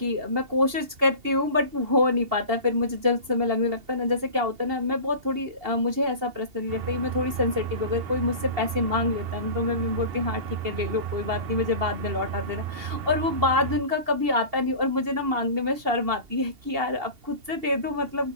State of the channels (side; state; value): left; late; 2.8 ms